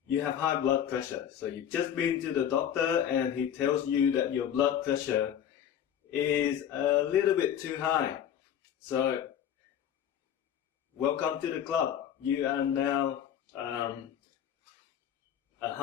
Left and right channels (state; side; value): quieter; right; 9.6 dB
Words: you have high blood pressure. So you've just been to the doctor and he tells you that your blood pressure is a little bit too high. So welcome to the club. You are now a